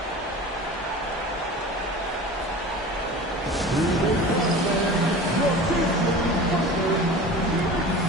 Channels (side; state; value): both; normal; correlation 0.37